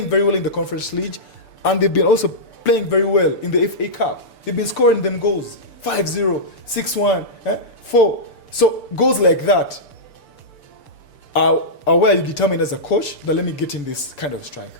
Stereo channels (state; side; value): late; right; 6.8 ms